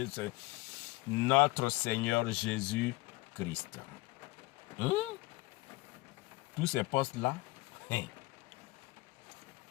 notre Seigneur Jésus-Christ. Tous ces postes-là,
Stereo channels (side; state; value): right; quieter; 21.2 dB